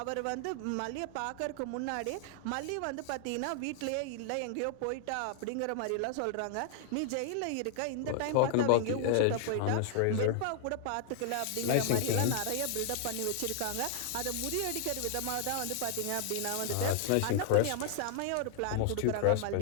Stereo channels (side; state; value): both; different; correlation 0.00